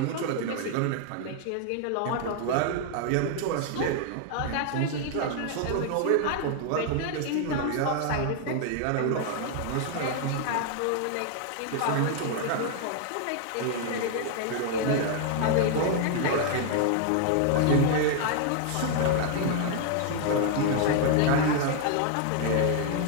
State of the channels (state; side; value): different; both; correlation 0.00